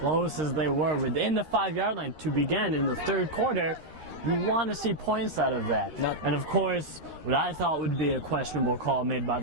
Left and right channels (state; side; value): late; left; 13 ms